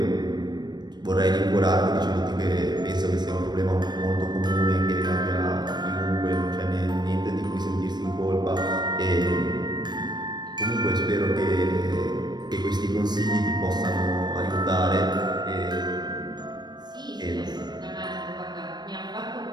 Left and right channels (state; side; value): late; left; 0.21 ms